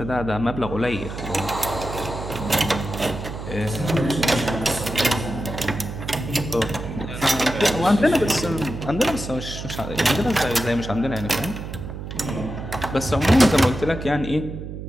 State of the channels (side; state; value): right; noise; hum, 8 dB below the sound